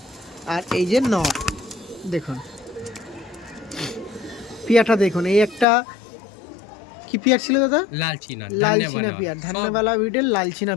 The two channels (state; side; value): drops out; right; at 5.7 s